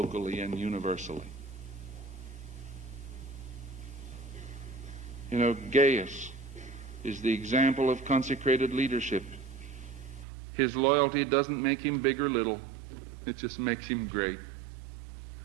and universally. You know, Gaius is the example of consecrated leadership. His loyalty doesn't make him big or little. It just makes him great.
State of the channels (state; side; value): drops out; left; at 10.2 s